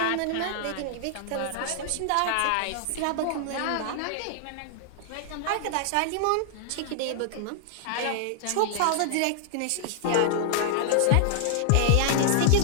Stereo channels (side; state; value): both; different; correlation -0.01